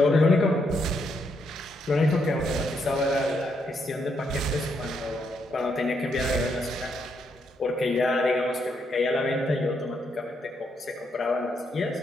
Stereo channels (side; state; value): both; normal; correlation 0.77